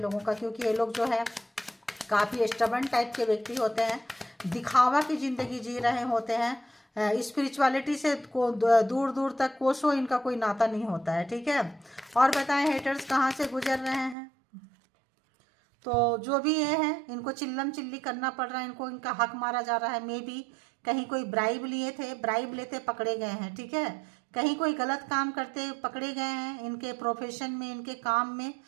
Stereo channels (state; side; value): drops out; left; at 14.2 s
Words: का। क्योंकि ये लोग जो है काफ़ी स्टबर्न टाइप के व्यक्ति होते हैं, दिखावा की ज़िंदगी जी रहे होते हैं। स्पिरिचुअलिटी से को दूर दूर तक कोसों इनका कोई नाता नहीं होता है, ठीक है। और बताएं हेटर्स कहाँ से गुजर रहे हैं। तो जो भी ये है, इनको चिल्लम चिल्ली करना पड़ रहा है, इनको इनका हक मारा जा रहा है। मे बी कहीं कोई ब्राइब लिए थे, ब्राइब लेते पकड़े गए हैं, ठीक है। कहीं कोई गलत काम करते पकड़े गए हैं। इनके प्रोफेशन में, इनके काम में